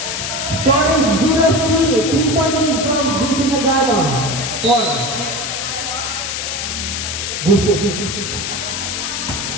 Score is 0-3. 3-point lead from Vincent Nagano. 4. Busit.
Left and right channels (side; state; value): left; noise; hiss, 3 dB below the sound